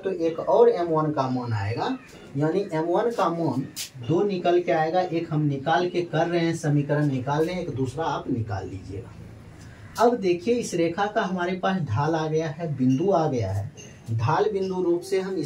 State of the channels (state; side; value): identical; both; correlation 1.00